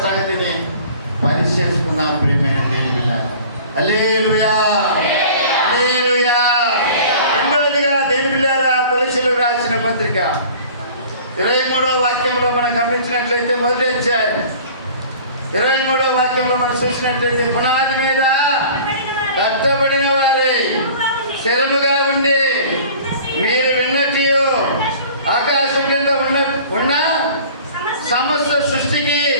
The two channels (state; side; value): inverted; both; correlation -0.46